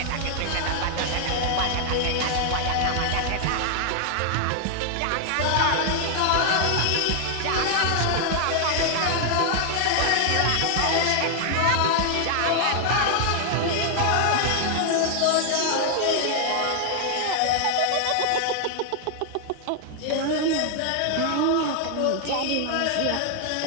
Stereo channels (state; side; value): different; both; correlation 0.00